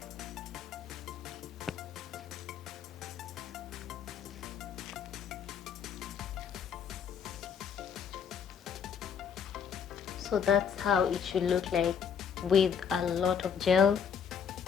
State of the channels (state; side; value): quieter; right; 7.2 dB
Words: So that's how it should look like with a lot of gel